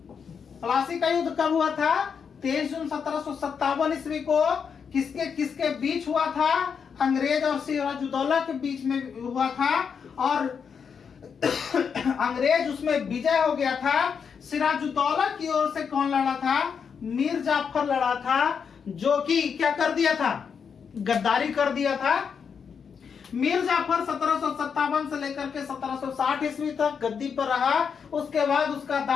प्लासी का युद्ध कब हुआ था? 23 जून 1757 ईस्वी को। किसके किसके बीच हुआ था? अंग्रेज और सिराजुद्दौला के बीच में हुआ था, और अंग्रेज उसमें विजय हो गया था। सिराजुद्दौला की ओर से कौन लड़ा था? मीर जाफर लड़ा था, जो कि क्या कर दिया था? गद्दारी कर दिया था। मीर जाफर 1757 से लेकर के 1760 ईस्वी तक गद्दी पर रहा। उसके बाद उसका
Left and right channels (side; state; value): right; quieter; 6.6 dB